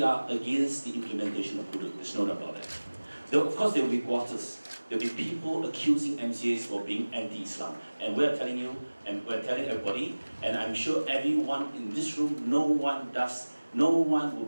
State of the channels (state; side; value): inverted; both; correlation -1.00